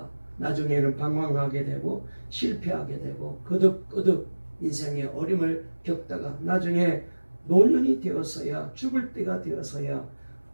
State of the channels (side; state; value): both; inverted; correlation -1.00